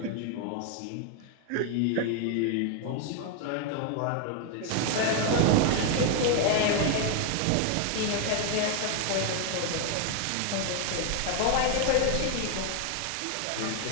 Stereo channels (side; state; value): both; different; correlation 0.01